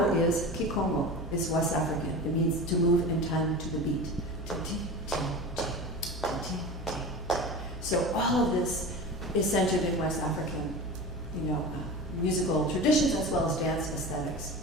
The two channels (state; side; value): normal; both; correlation 0.31